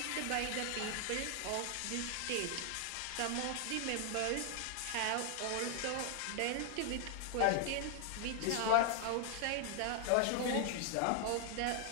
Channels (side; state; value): both; different; correlation 0.00